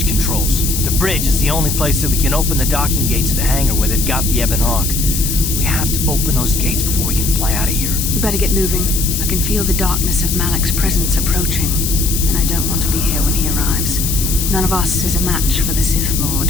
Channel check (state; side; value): noise; left; hiss, 2 dB below the sound